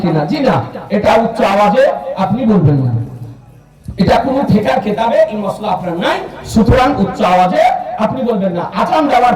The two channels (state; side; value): identical; both; correlation 1.00